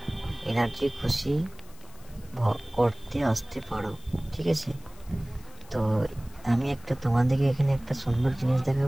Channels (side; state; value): left; noise; hiss, 24 dB below the sound